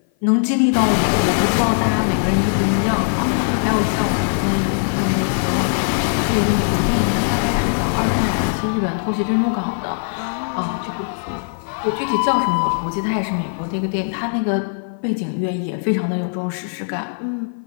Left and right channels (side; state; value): right; silent; 56 dB below the other